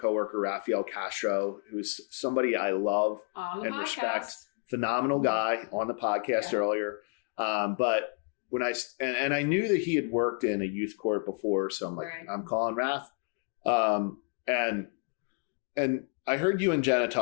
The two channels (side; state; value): right; quieter; 36.2 dB